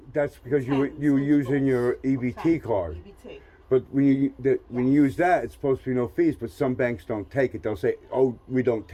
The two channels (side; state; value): both; identical; correlation 1.00